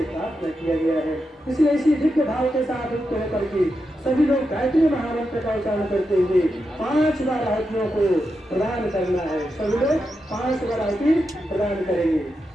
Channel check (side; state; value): both; normal; correlation 0.87